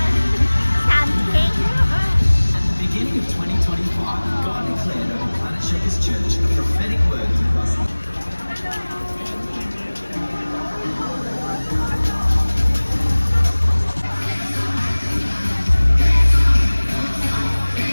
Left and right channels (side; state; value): both; inverted; correlation -1.00